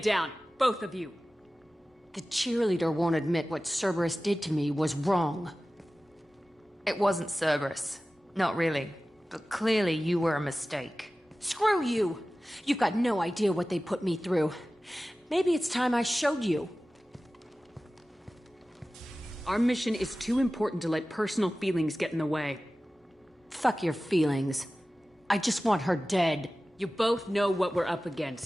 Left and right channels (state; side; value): normal; both; correlation 0.96